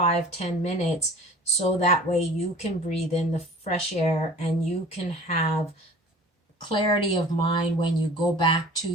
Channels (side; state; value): both; normal; correlation 0.44